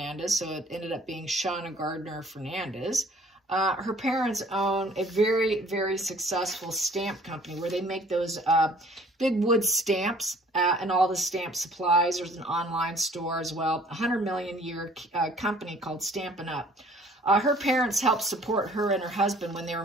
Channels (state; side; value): normal; both; correlation 0.54